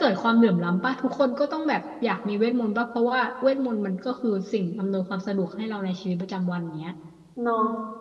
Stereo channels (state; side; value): identical; both; correlation 1.00